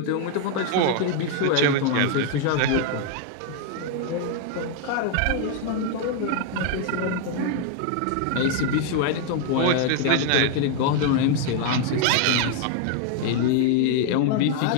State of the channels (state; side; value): different; both; correlation 0.00